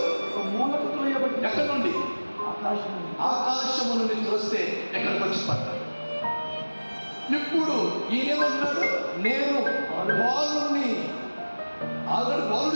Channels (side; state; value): both; inverted; correlation -1.00